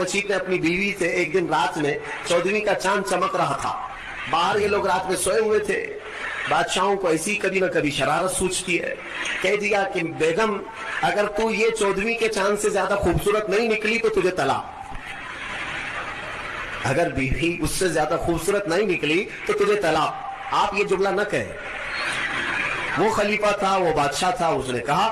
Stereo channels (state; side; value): identical; both; correlation 1.00